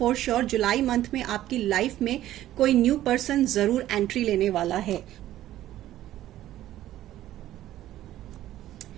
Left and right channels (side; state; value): left; quieter; 13.6 dB